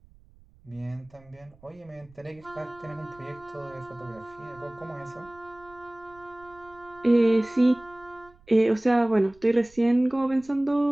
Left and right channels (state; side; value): noise; right; rumble, 28 dB below the sound